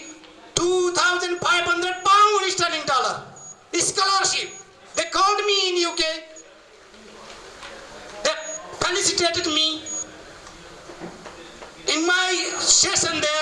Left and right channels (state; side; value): identical; both; correlation 1.00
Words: £2,500 sterling scholarship. They called me in UK. They felicitated me. In my session